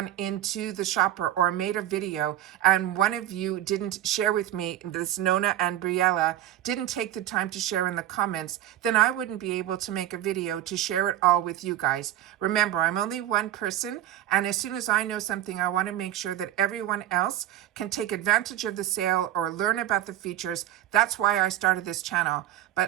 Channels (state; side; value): quieter; left; 12.5 dB